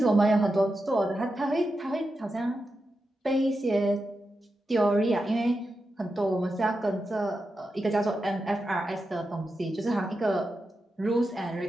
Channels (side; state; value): both; normal; correlation 0.89